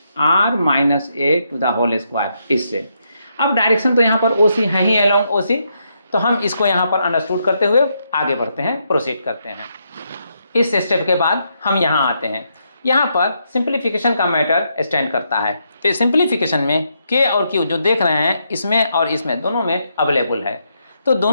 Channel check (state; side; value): inverted; both; correlation -0.79